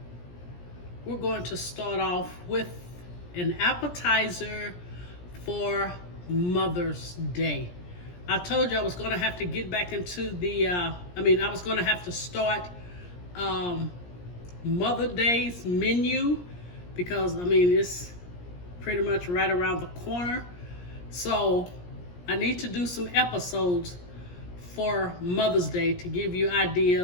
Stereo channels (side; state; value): right; late; 17 ms